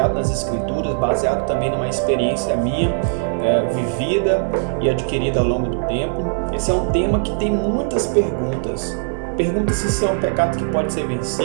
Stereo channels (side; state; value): left; silent; digital silence